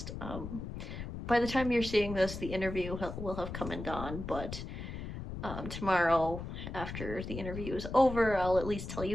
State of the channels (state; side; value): noise; left; rumble, 7 dB below the sound